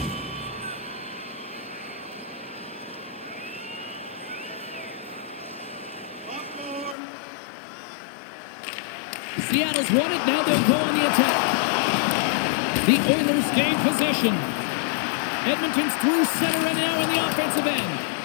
Seattle's won it, now they'll go on the attack. The Oilers gain possession. Edmonton's through center and now in the offensive end.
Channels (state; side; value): drops out; right; at 7.0 s